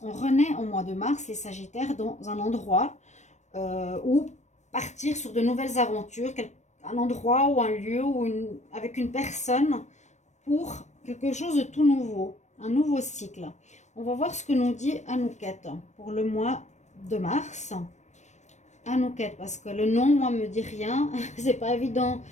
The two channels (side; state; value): right; late; 0.34 ms